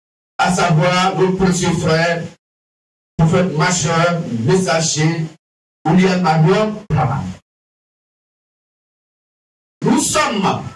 à savoir notre précieux frère, prophète majeur, messager, William Marion Branham. Nous sommes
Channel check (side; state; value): both; identical; correlation 1.00